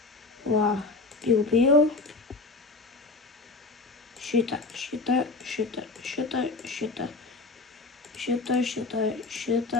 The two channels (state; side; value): quieter; right; 3.5 dB